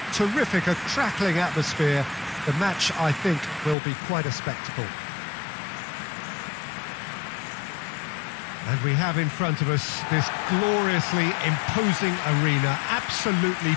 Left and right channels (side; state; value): right; drops out; at 3.8 s